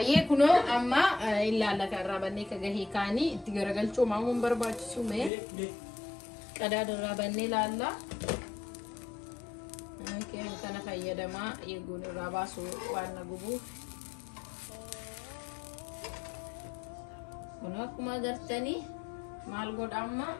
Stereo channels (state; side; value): drops out; right; at 5.3 s